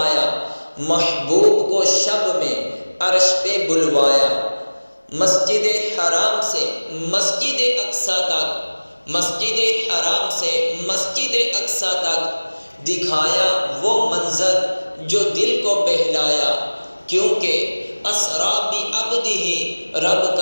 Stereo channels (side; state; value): both; inverted; correlation -1.00